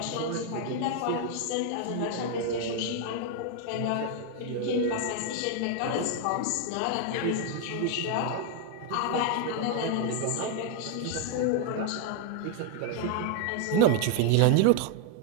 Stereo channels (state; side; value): different; both; correlation 0.00